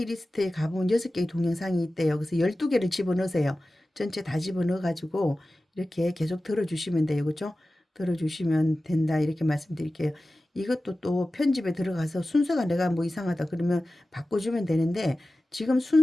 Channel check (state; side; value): normal; both; correlation 0.95